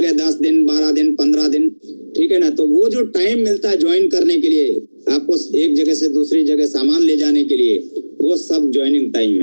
है, 10 दिन, 12 दिन, 15 दिन, ठीक है ना। तो वो जो टाइम मिलता है ज्वाइन करने के लिए, आपको एक जगह से दूसरी जगह सामान ले जाने के लिए, वो सब ज्वाइनिंग टाइम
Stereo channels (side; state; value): both; inverted; correlation -1.00